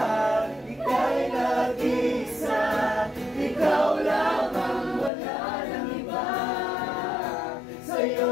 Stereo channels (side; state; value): right; drops out; at 5.1 s